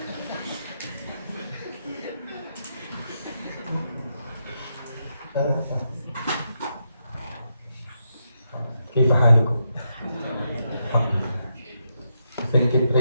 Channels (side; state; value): both; inverted; correlation -0.82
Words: كيف حالكم؟ Thank and